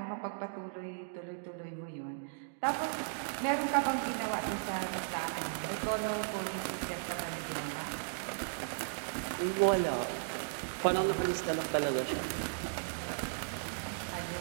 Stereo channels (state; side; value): silent; left; digital silence